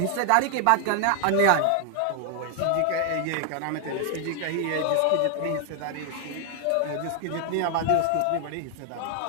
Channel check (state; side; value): different; both; correlation 0.00